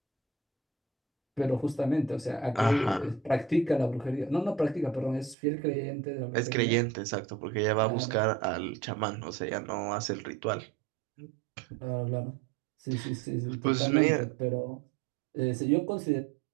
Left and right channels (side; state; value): left; drops out; at 5.4 s